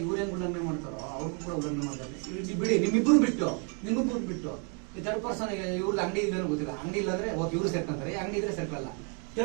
ಇವ್ರೇನು ಉಲ್ಲಂಘನೆ ಮಾಡ್ತಾರೋ ಅವ್ರಿಗೂ ಕೂಡ ಉಲ್ಲಂಘನೆ ಮಾಡ್ತಾರೆ. ಬಿಡಿ, ನಿಮ್ಮಿಬ್ಬರು ಬಿಟ್ಟು ಈ ಥರ್ಡ್ ಪರ್ಸನ್ ಇವ್ರದ್ದು ಅಂಗಡಿ ಇಲ್ಲೇನೋ ಗೊತ್ತಿಲ್ಲ. ಅಂಗಡಿ ಇಲ್ಲಾಂದ್ರೆ ಓಕೆ ಇವ್ರು ಸೇರ್ಕೊಂತಾರೆ, ಅಂಗಡಿ ಇದ್ರೆ ಸೇರ್ಕಲ್ಲ.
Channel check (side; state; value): left; quieter; 38.3 dB